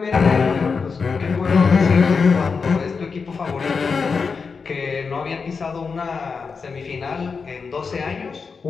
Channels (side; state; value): right; quieter; 5.2 dB